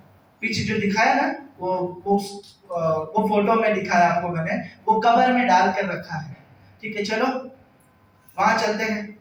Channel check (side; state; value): both; identical; correlation 1.00